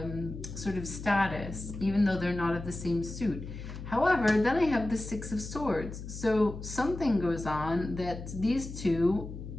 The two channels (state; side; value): noise; left; hum, 10 dB below the sound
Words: sort of status, even though they're not of the same suit. However, then I have the Six of Swords. So something goes on that these two